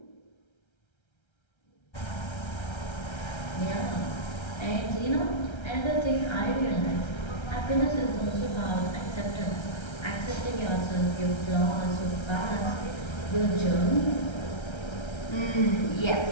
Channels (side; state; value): right; late; 1.3 ms